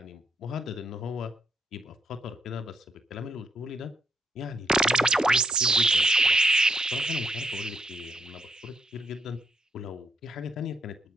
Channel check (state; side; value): normal; both; correlation 0.74